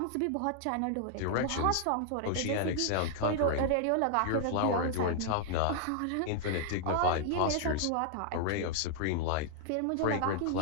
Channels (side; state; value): both; different; correlation -0.01